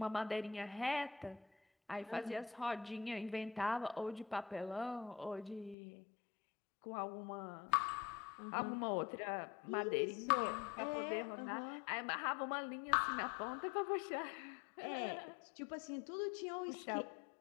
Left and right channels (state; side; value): drops out; right; at 5.8 s